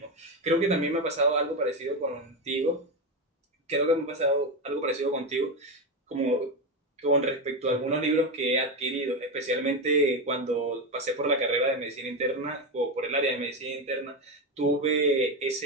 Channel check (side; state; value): both; normal; correlation 0.13